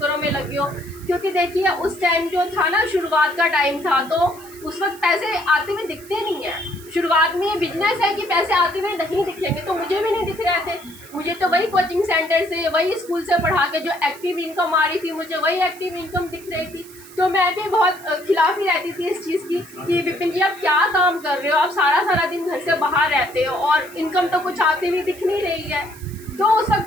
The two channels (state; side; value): noise; right; hiss, 20 dB below the sound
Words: में लगे हो। क्योंकि देखिए उस टाइम जो था ना, शुरुआत का टाइम था, तो उस वक्त पैसे आते हुए दिखते नहीं है। शुरुआत में ये बिजनेस है कि पैसे आते हुए नहीं दिखेंगे, तो मुझे भी नहीं दिख रहे थे। मुझे तो वही कोचिंग सेंटर से, वही स्कूल से पढ़ा के जो एक्टिव इनकम आ रही थी, मुझे वही एक्टिव इनकम दिख रही थी। तो मैं भी बहुत खिलाफ ही रहती थी इस चीज़ की कि विपिन जी आप क्या काम कर रहे हो, आप सारा दिन घर से बाहर रहते हो और इनकम तो कुछ आती हुई दिख नहीं रही है। तो उस